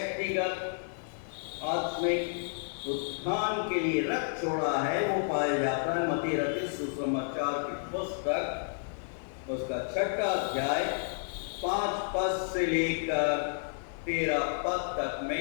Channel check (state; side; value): silent; right; 57 dB below the other